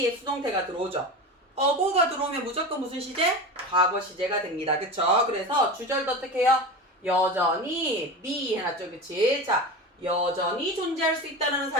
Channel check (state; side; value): normal; both; correlation 0.27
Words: 수동태가 들어오죠. 어고가 들어오면 무조건 무슨 시제? 과거 시제가 됩니다. 그쵸? 그래서 주절도 어떻게 해요? 여전히 be 해놨죠. 그치? 자, 여전히 존재할 수 있다는